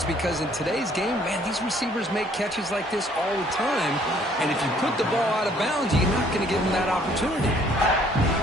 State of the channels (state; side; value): normal; both; correlation 0.61